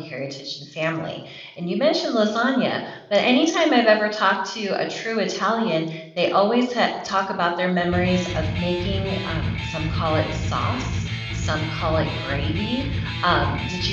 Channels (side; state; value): both; identical; correlation 1.00